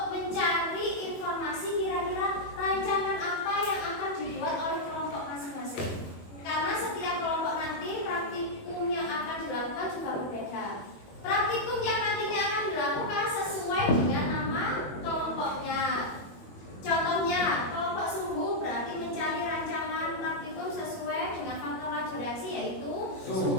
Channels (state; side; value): late; right; 21 ms